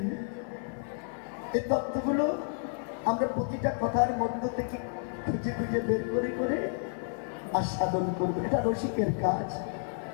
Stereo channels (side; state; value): right; silent; 57 dB below the other